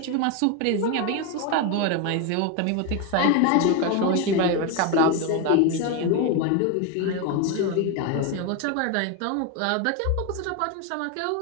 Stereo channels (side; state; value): both; different; correlation 0.02